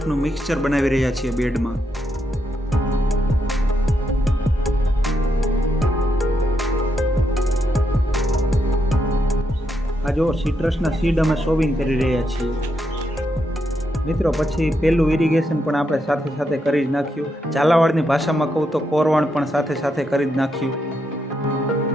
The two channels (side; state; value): both; normal; correlation 0.80